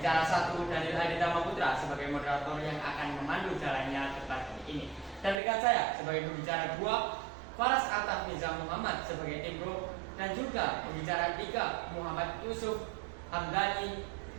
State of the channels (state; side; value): drops out; left; at 5.4 s